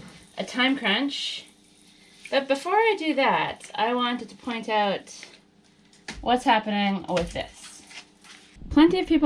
time crunch. But before I do that, I wanted to point out what's happening with this. Plenty of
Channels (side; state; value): both; identical; correlation 1.00